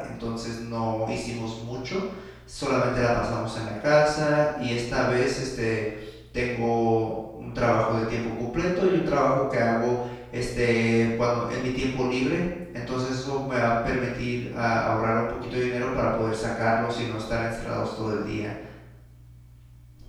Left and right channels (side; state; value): both; identical; correlation 1.00